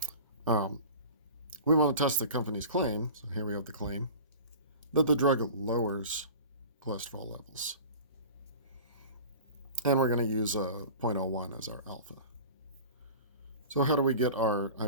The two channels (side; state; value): both; inverted; correlation -0.38